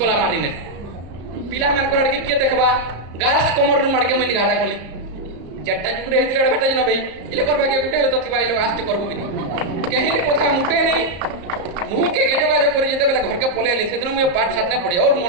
মারিনে পিলা মান করার কি কিয়ে দেখবা গাছ কমর মারকে মুই ঘাটা কলি যেটা যুগরে হইছিল আড়বেটে না ভাই ইলে করবা কে গুটে তো থিবা ইলো আস্তে করবো কি কেহিনি কথা মুটে নেই মুহকে যোগাযোগ করে যেতে বেলা ঘরকে পলে আলি সেদিন মুই পাঠ সাথে পড়ি ওর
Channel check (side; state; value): left; late; 34 ms